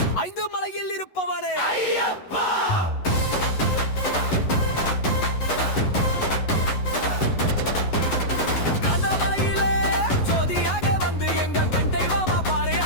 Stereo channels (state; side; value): late; right; 11 ms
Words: ஐந்து மலையில் இருப்பவனே ஐயப்பா.